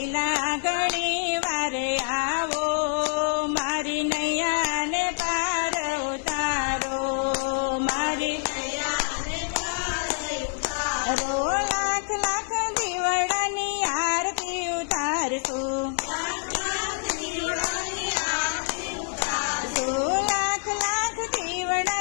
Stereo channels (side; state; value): right; silent; digital silence